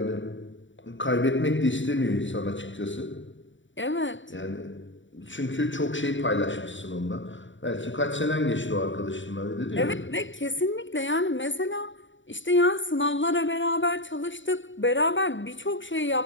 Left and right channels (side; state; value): right; late; 0.55 ms